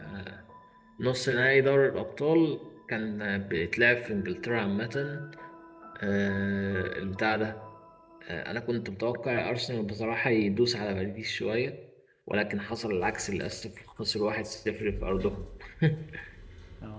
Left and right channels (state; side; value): identical; both; correlation 1.00